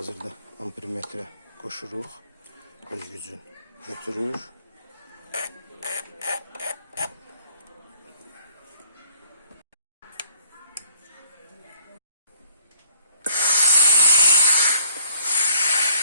ampermetrə qoşuruq. Öz gücün götürür.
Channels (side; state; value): both; inverted; correlation -0.60